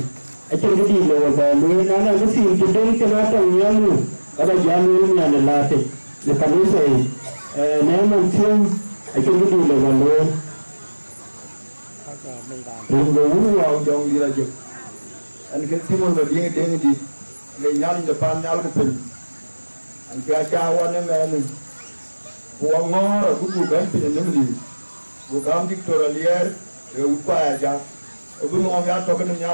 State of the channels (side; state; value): both; inverted; correlation -1.00